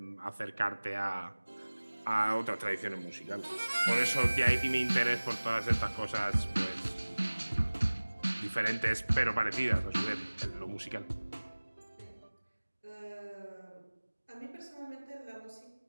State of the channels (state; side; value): inverted; both; correlation -1.00